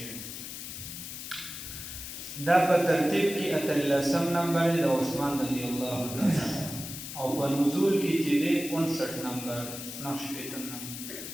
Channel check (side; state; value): left; noise; hiss, 9 dB below the sound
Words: دا په ترتیب کې 18 نمبر د عثمان رضی الله تعالی او په نزول کې چې دی 59 نمبر نقشپیتم نمبر.